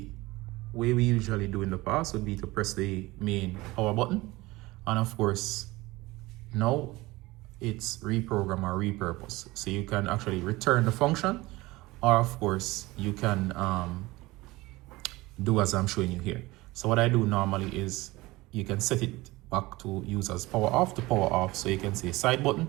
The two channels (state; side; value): quieter; left; 20.5 dB